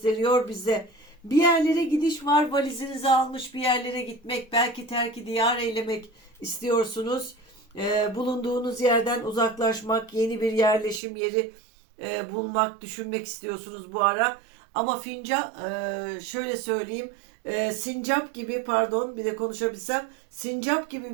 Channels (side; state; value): left; drops out; at 11.0 s